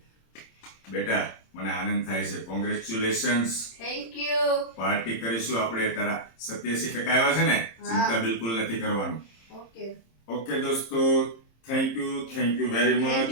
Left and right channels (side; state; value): right; late; 26 ms